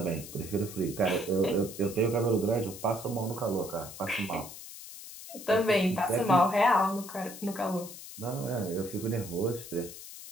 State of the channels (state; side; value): noise; left; hiss, 13 dB below the sound